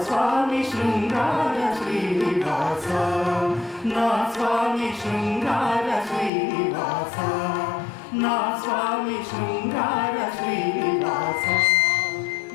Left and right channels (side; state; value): right; drops out; at 6.3 s